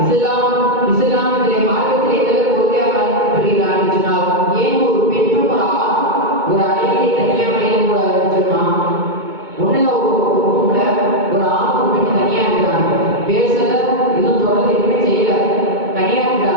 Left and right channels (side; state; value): left; late; 2.2 ms